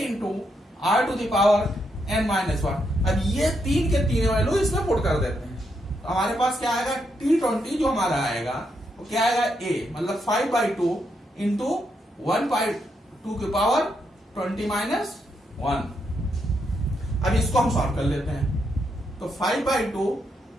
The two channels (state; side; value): normal; both; correlation 0.80